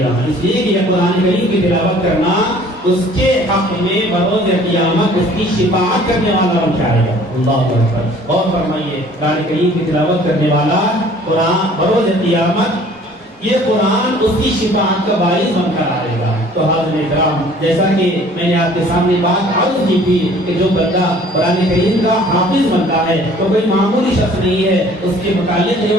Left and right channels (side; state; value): both; normal; correlation 0.53